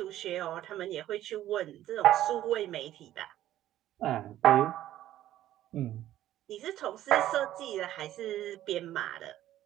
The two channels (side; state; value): left; quieter; 13.1 dB